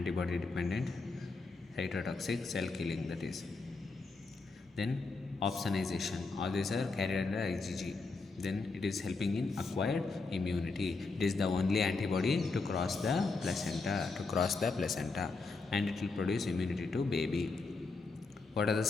dependent cytotoxic cell killing, that is. Then opsonization, all these are carried under IgG. Then it is helping in acquired immunity. It is the only antibody to cross the placenta, and it will produce immunity to baby. What are the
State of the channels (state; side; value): quieter; right; 3.9 dB